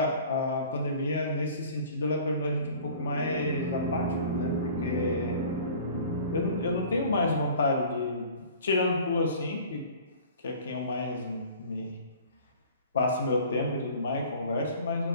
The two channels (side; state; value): both; inverted; correlation -0.47